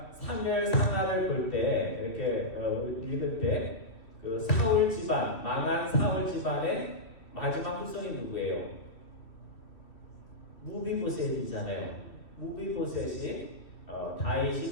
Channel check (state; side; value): late; right; 2.5 ms